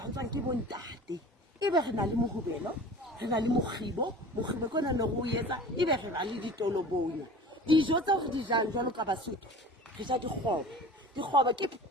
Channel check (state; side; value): normal; both; correlation 0.40